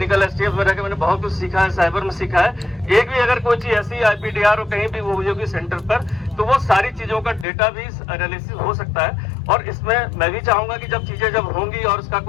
STF में रहकर मैंने बहुत कुछ सीखा है, साइबर में सीखा है। एक भी अगर कोई चीज ऐसी IPDR और कहीं भी वो हुई होगी सेंटर पर, तो वो सारी चीजों का डेटा भी एनालिसिस हो सकता है। और इसमें मैं भी चाहूंगा कि जब चीजें जब होंगी और उसका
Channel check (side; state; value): right; drops out; at 7.5 s